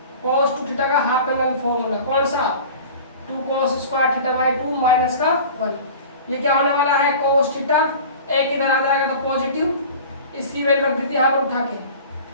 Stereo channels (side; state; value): both; inverted; correlation -0.39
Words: का हाफ एंगल फॉर्मूला, कौन सा, 2 cos स्क्वायर θ/2 माइनस का 1, ये क्या होने वाला है cos θ, एक इधर आ जाएगा तो पॉजिटिव, इसकी वैल्यू रख दी थी यहाँ पर उठा के,